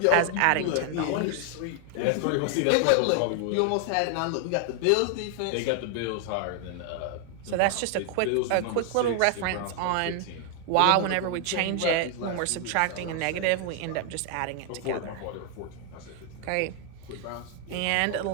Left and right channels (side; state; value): both; different; correlation 0.00